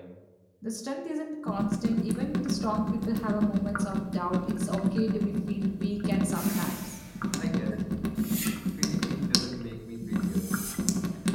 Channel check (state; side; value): identical; both; correlation 1.00